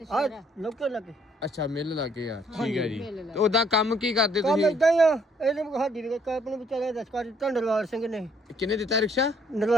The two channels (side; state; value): both; normal; correlation 0.65